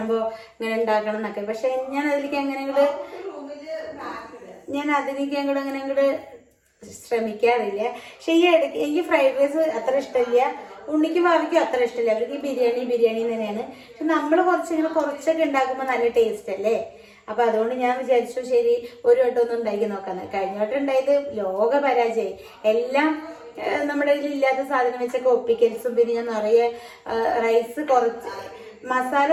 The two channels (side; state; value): both; identical; correlation 1.00